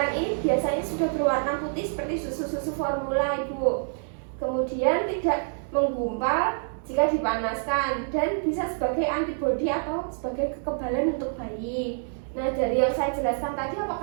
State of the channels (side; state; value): left; silent; digital silence